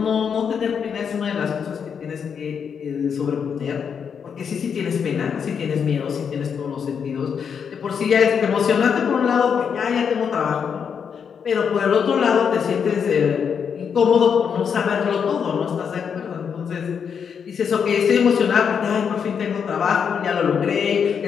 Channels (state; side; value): quieter; right; 7.0 dB